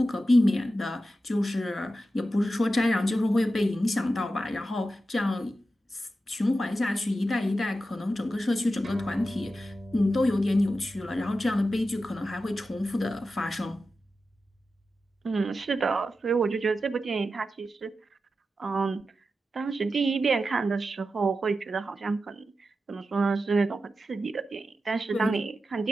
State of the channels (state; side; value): normal; both; correlation 0.91